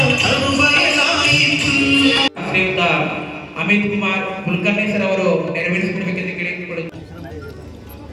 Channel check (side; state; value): both; identical; correlation 1.00